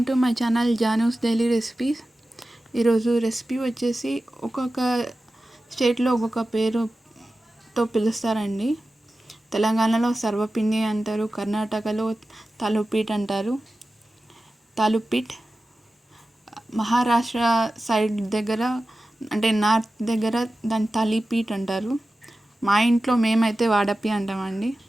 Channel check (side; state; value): both; normal; correlation 0.94